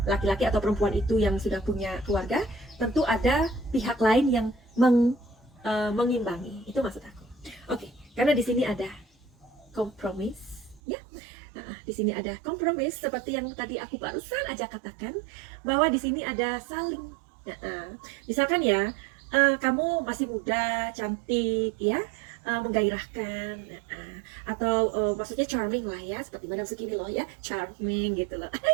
laki-laki atau perempuan itu yang sudah punya keluarga, tentu ada pihak lain yang mengimbangi. Itu maksud aku. Oke, karena di sini ada kompromis ya. Nah, di sini ada kompromis seperti yang tadi aku barusan aja katakan, bahwa di sini ada saling. Misalkan ya, kamu masih muda, cantik ya, menggairahkan, atau maksudnya charming lah ya, seperti Madam Suki loh ya, charming gitu loh.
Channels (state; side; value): drops out; left; at 10.8 s